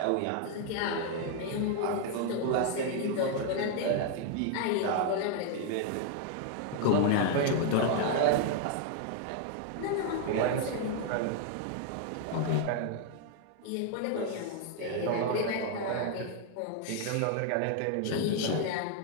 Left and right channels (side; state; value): both; different; correlation 0.00